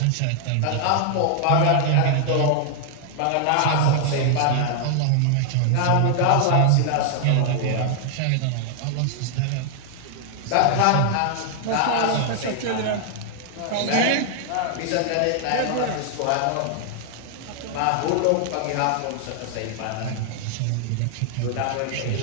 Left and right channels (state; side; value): different; both; correlation 0.00